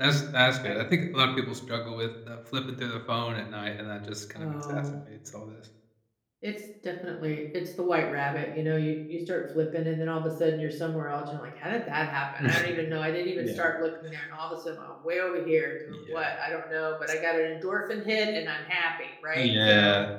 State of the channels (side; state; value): both; identical; correlation 1.00